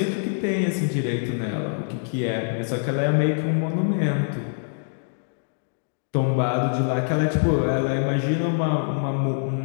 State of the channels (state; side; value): silent; right; digital silence